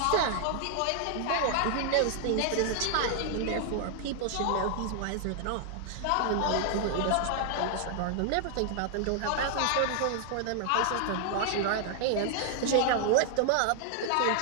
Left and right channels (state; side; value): different; both; correlation 0.00